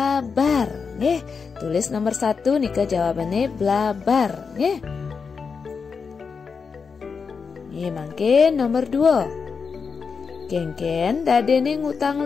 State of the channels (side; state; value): right; quieter; 5.4 dB